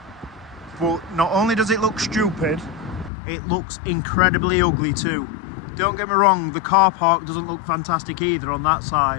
but not only does it look stupid, it looks incredibly ugly too. Don't get me wrong, the car park doesn't look fantastic either on that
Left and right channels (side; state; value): right; drops out; at 3.1 s